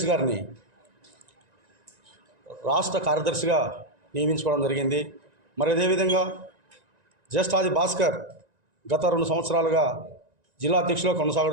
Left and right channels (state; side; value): late; left; 1.9 ms